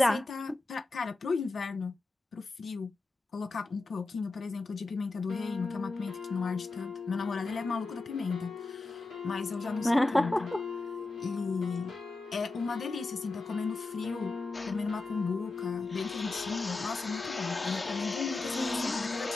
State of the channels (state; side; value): quieter; right; 3.3 dB